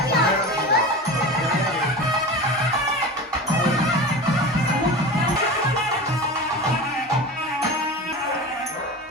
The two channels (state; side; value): normal; both; correlation 0.30